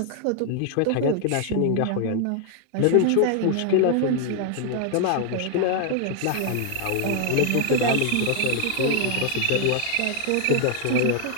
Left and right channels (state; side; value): different; both; correlation 0.00